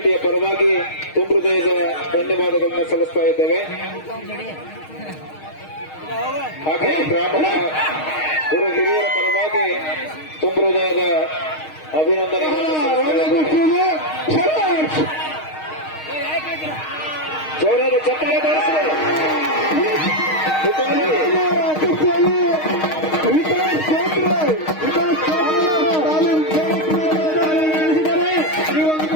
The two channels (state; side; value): late; right; 6.4 ms